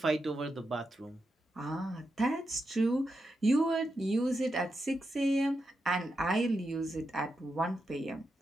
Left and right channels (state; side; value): normal; both; correlation 0.87